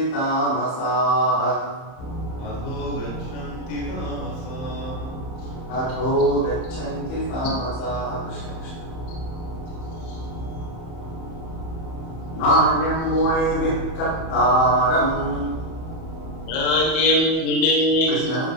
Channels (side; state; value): right; late; 31 ms